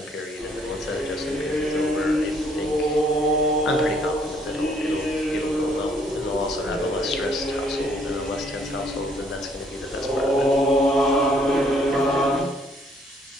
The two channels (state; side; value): normal; both; correlation 0.65